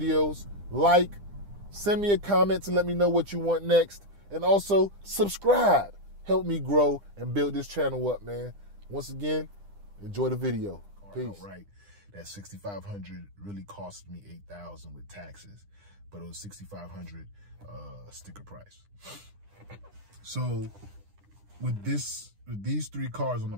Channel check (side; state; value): left; late; 9.9 ms